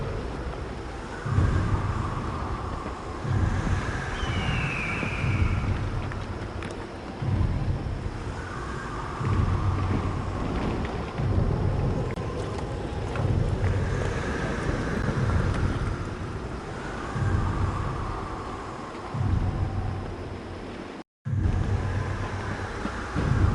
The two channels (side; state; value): both; identical; correlation 1.00